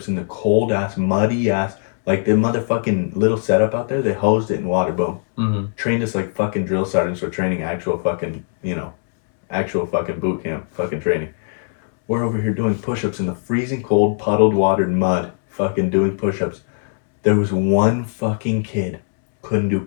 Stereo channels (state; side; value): silent; right; digital silence